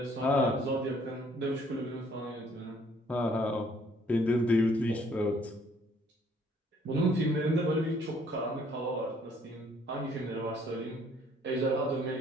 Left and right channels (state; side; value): normal; both; correlation 0.62